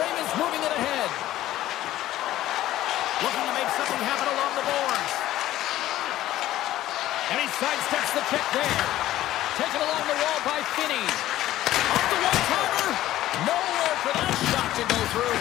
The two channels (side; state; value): right; quieter; 14.3 dB